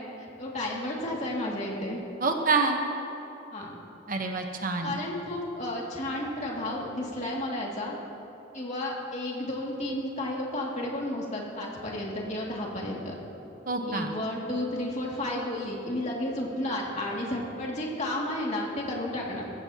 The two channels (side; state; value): both; normal; correlation 0.22